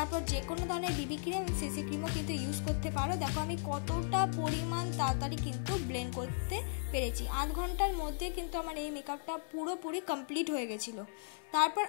যে কোনো ধরনের বিবি ক্রিম, সিসি ক্রিমও কিন্তু ইউজ করতে পারো। দেখো আমি কতটা পরিমাণ তাড়াতাড়ি কিন্তু ব্লেন্ড করতে পেরেছি। 8 ঘন্টার মধ্যে কিন্তু আমার এই মেকআপটা পুরোপুরি কমপ্লিট হয়ে গেছিলো। তারপর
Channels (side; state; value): right; silent; digital silence